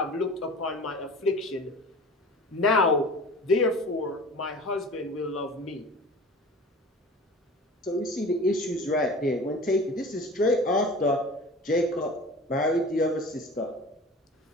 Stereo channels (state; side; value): normal; both; correlation 0.39